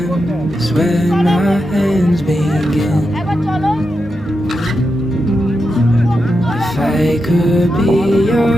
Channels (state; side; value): normal; both; correlation 0.87